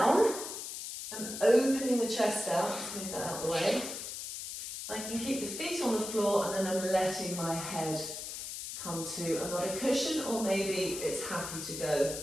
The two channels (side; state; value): left; noise; hiss, 7 dB below the sound